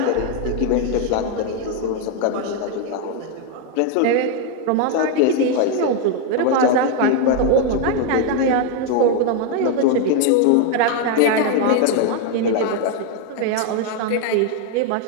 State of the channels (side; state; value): both; different; correlation 0.01